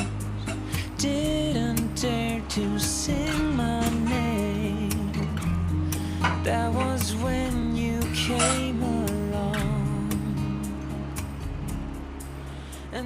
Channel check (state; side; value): identical; both; correlation 1.00